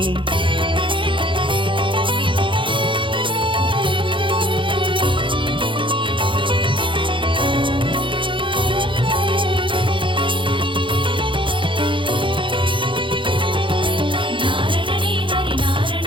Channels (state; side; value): late; left; 0.24 ms